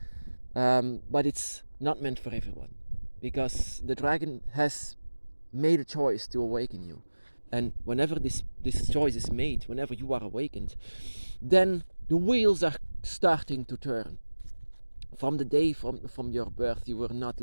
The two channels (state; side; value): inverted; both; correlation -1.00